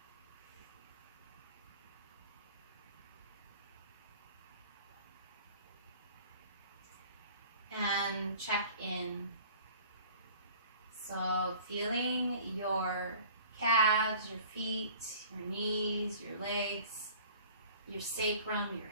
And check in. So feeling your calves, your feet, your knees, your legs, your sacrum,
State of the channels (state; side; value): inverted; both; correlation -0.47